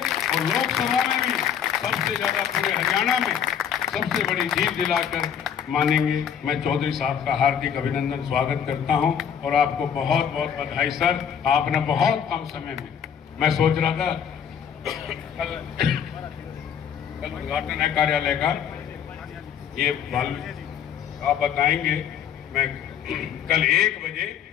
और लोकसभा में भी सबसे ज्यादा पूरे हरियाणा में सबसे बड़ी जीत दिलाकर मानेंगे। मैं चौधरी साहब का हार्दिक अभिनंदन स्वागत करता हूं, और आपको बहुत बहुत बधाई सर। आपने बहुत कम समय में, मैं सोच रहा था कल उद्घाटन है कार्यालय का, ये आप बताएंगे। मैं कल 1 बजे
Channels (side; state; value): right; quieter; 8.4 dB